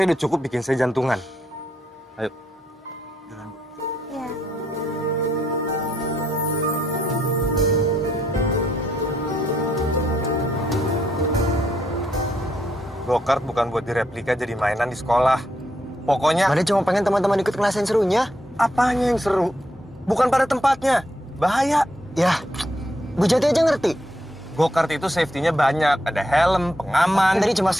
udah cukup bikin saya jantungan. Ayo. ya. Go-kart bukan buat direplika jadi mainan di sekolah. Pokoknya... Mada cuma pengen teman-teman ikut kelas yang serunya. Apanya yang seru? Bukan pada tempatnya. Bahaya. Ya, Bu Jati aja ngerti. Go-kart itu safety-nya banyak. Ada helm, pengaman. Tadi cuma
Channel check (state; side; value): normal; both; correlation 0.77